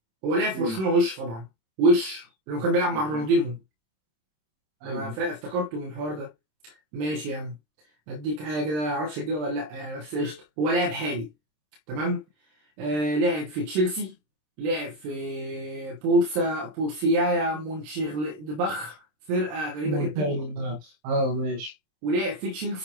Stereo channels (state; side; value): late; left; 26 ms